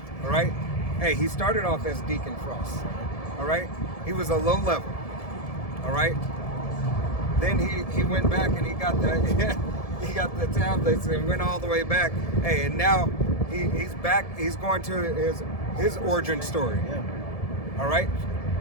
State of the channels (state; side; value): late; right; 1.7 ms